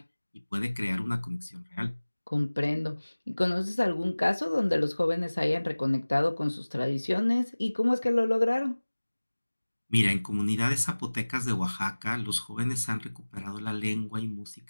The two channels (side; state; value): both; inverted; correlation -1.00